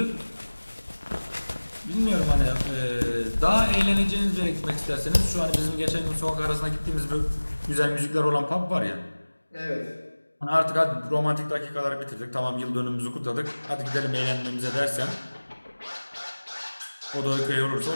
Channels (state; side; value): inverted; both; correlation -1.00